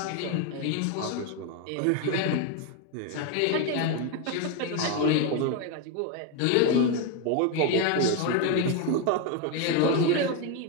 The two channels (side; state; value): both; different; correlation 0.02